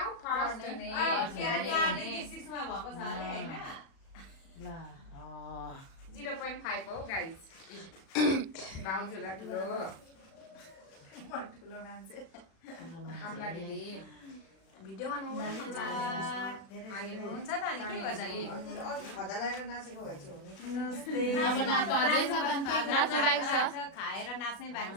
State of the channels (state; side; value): late; right; 36 ms